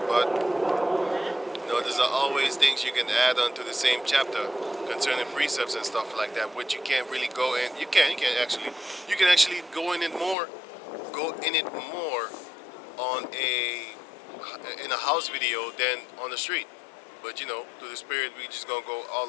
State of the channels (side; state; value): right; drops out; at 10.4 s